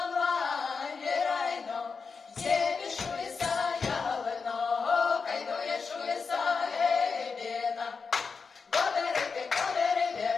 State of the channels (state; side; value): quieter; right; 5.1 dB